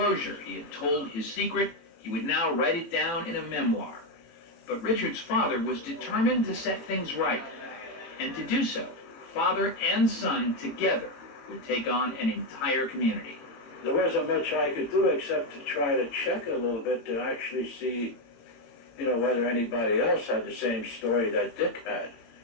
He had told his secret. He would now write it down in a memoir. But Richard's father was determined to set things right. And to do so, father and son together would take on an entire community. There wasn't much I could do except to try to check a little bit to actually see, whether anybody else had the same story that Dick had.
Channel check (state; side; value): late; right; 18 ms